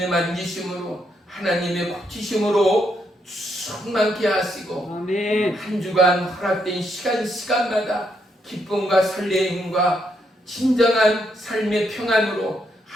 만지심으로, 하나님의 고치심으로 충만케 하시고 아멘. 한 주간 허락된 시간마다 기쁨과 설레임과 진정한 삶의 평안으로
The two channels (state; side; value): normal; both; correlation 0.77